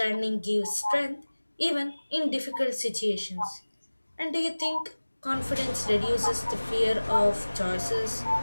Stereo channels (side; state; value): both; inverted; correlation -1.00